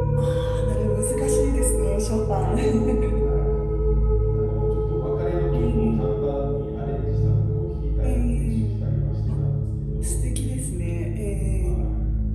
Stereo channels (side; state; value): both; identical; correlation 1.00